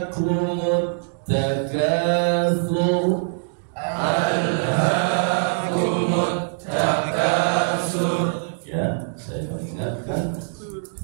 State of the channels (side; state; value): left; silent; digital silence